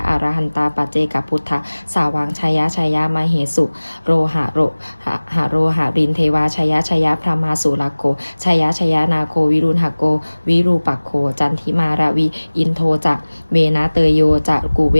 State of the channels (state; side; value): inverted; both; correlation -1.00